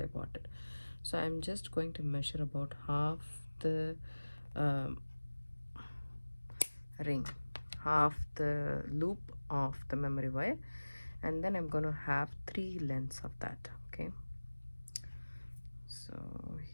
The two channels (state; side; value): inverted; both; correlation -1.00